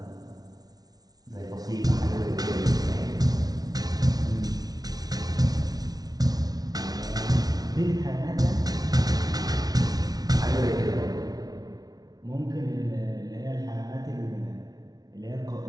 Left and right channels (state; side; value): late; left; 0.19 ms